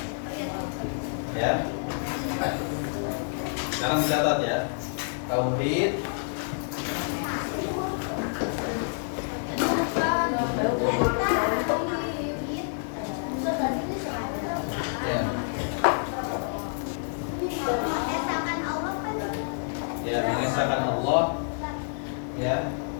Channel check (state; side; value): silent; right; 59 dB below the other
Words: Ya. Sekarang dicatat ya. Tauhid ya, mengesahkan Allah, ya,